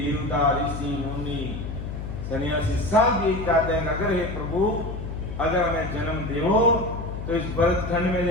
ऋषि, मुनि, सन्यासी सब यही चाहते हैं, अगर हे प्रभु अगर हमें जन्म देवो तो इस भरतखंड में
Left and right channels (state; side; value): noise; left; hum, 7 dB below the sound